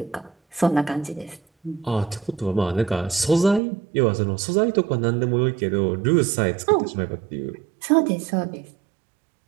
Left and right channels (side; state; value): left; drops out; at 3.6 s